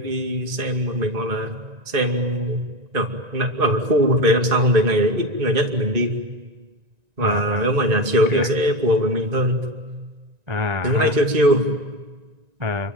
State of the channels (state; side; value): late; left; 1.9 ms